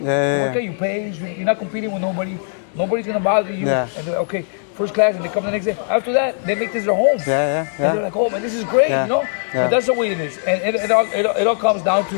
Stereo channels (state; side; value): silent; right; digital silence